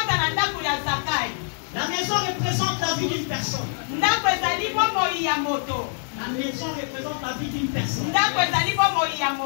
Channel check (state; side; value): silent; right; digital silence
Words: La maison représente la vie d'une personne. La maison représente la vie d'une personne.